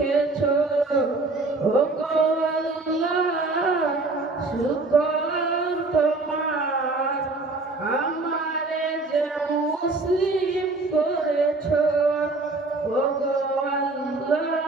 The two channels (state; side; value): quieter; left; 3.4 dB